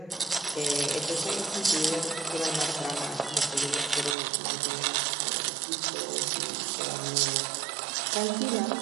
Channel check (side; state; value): left; drops out; at 4.2 s